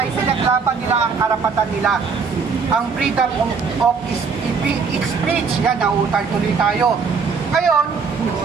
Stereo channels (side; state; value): left; quieter; 5.4 dB